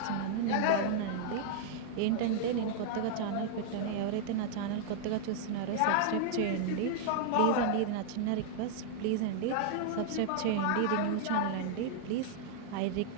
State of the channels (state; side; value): different; both; correlation 0.00